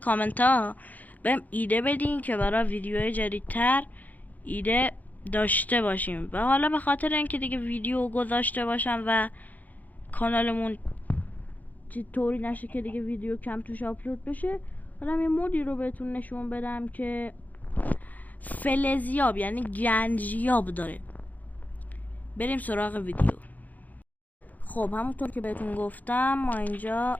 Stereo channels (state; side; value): late; right; 0.080 ms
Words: ها بهم ایده بدین که برای ویدیوهای جدیدتر ایده داشته باشیم. و حالا به خاطر اینکه دیگه ویدیو گذاشته باشم و کانالمون طوری نشه که دیگه ویدیو کم توش آپلود بشه، حالا یه مودی رو بهتون نشون بدم که فلزیاب یعنی گنجیاب داره. بریم سراغ ویدیو. خب همونطور که بهتون گفتم ما اینجا،